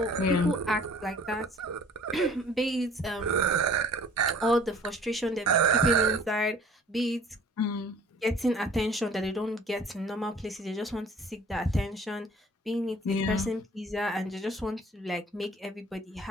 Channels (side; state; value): both; normal; correlation 0.51